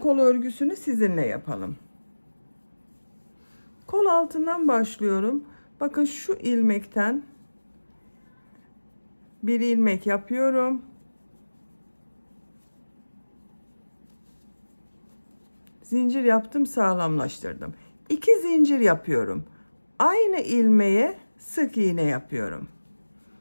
örgüsünü sizinle yapalım. Kol altından başlıyorum. Bakın şu ilmekten Bir ilmek yapıyorum. Zincir yaptım, sağlamlaştırdım. 2 zincir yapıyorum. Aynı ilmeğe sık iğne yapıyorum.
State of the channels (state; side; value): inverted; both; correlation -1.00